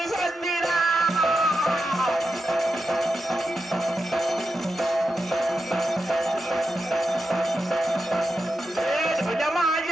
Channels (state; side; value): normal; both; correlation 0.88